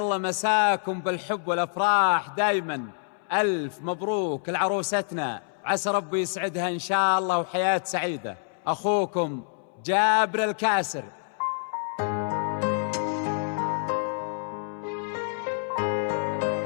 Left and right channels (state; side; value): silent; right; 60 dB below the other